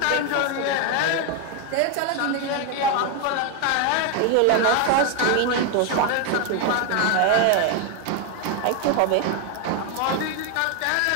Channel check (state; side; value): different; both; correlation 0.01